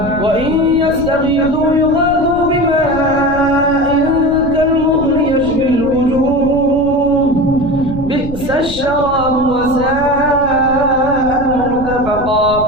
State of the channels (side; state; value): left; noise; rumble, 11 dB below the sound